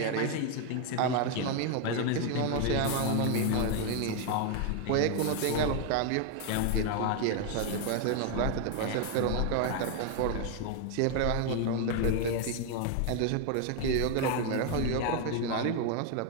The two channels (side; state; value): both; different; correlation 0.01